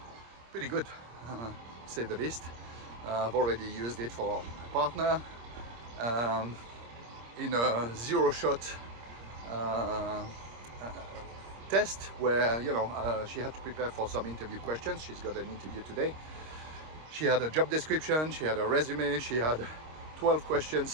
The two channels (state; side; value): late; left; 26 ms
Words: pretty good, to say the least. I've already used it for my partner in a 0-shot test where, you know, she had to prepare for some interview questions. She's got an interview today. She had a job description, she had a resume, she had 12